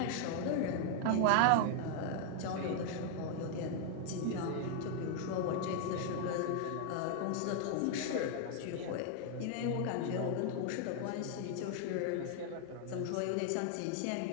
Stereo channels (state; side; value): different; both; correlation 0.00